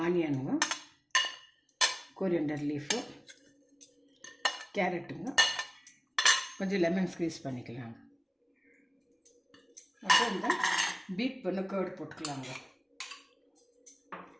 ஆனியனுங்க, கோரியண்டர் லீஃபு, கேரட்டுங்க, கொஞ்சம் லெமன் ஸ்க்வீஸ் பண்ணிக்கலாங்க. அப்புறம் இந்த பீட் பண்ண கர்டு போட்டுக்கலாங்க.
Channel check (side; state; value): both; identical; correlation 1.00